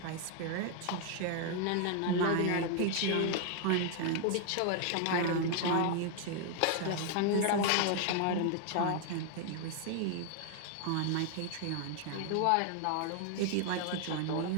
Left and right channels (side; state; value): both; different; correlation 0.00